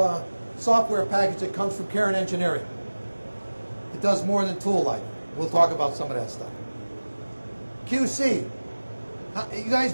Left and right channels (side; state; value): both; inverted; correlation -1.00